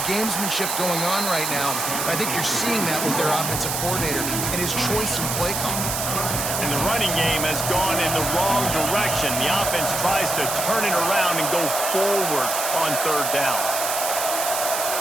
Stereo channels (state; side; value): noise; right; hiss, 2 dB below the sound